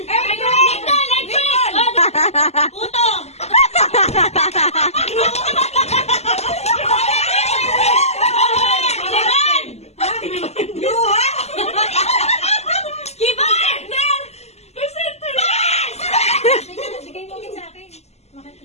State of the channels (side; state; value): right; late; 0.31 ms